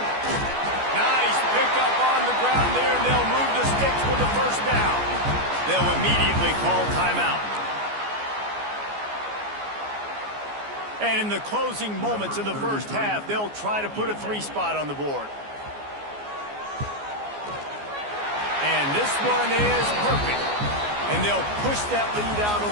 Nice pickup on the ground there, and they'll move the sticks with the first down. They'll immediately call timeout. And in the closing moments of the first half, they'll try to put a 3-spot on the board. And this one is perfect. And they'll push that lead out a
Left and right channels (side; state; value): left; late; 14 ms